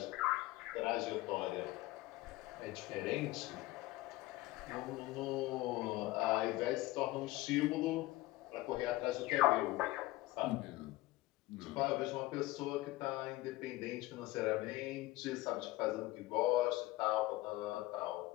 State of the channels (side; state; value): right; quieter; 18.5 dB